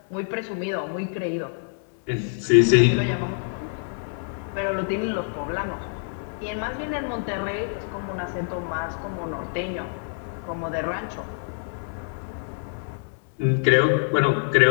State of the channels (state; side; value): silent; right; digital silence